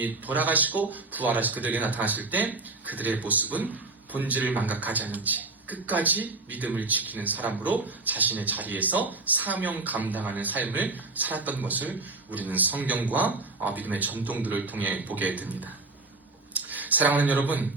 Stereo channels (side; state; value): left; quieter; 3.3 dB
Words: 돌아가시고 부활하시 그들에게 나타나실 때 그들의 모습은 본질을 망각하지 않은 채 끝까지 믿음을 지키는 사람으로 자신의 자리에서 사명 감당하는 삶을 살았던 것을 우리는 성경과 믿음의 전통들을 통해 보게 됩니다. 사랑하는 여러분,